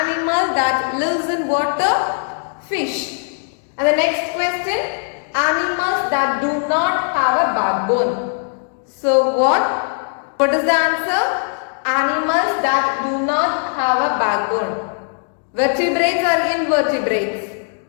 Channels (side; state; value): right; silent; digital silence